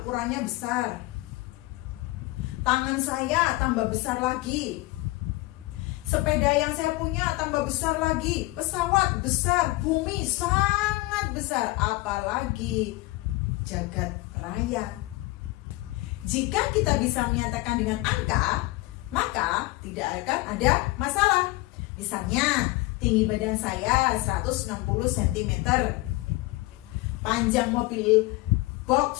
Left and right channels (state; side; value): quieter; right; 20.7 dB